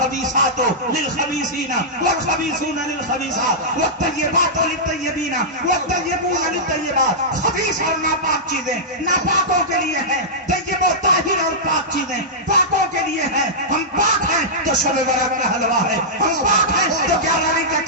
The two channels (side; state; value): both; normal; correlation -0.13